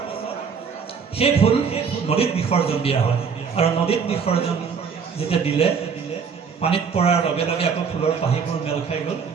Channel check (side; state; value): left; quieter; 6.1 dB